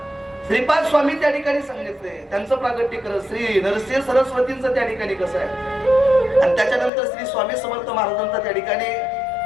श्रीपाद स्वामी त्या ठिकाणी सांगितले, त्यांचं प्रागट्य करत श्री नरसिंह सरस्वतींचं त्या ठिकाणी कसं आहे आणि त्याच्यानंतर श्री स्वामी समर्थ महाराजांचा त्या ठिकाणी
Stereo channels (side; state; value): right; drops out; at 6.9 s